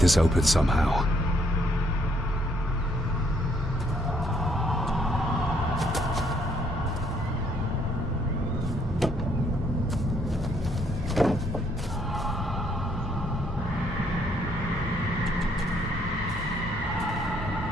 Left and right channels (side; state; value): both; normal; correlation 0.68